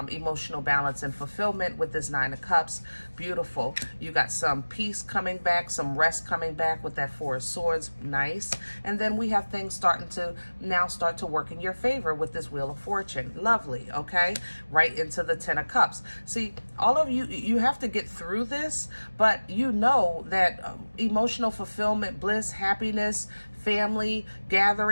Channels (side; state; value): both; inverted; correlation -1.00